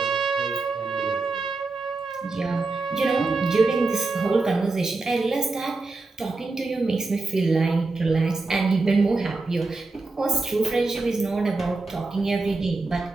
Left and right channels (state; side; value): quieter; left; 3.6 dB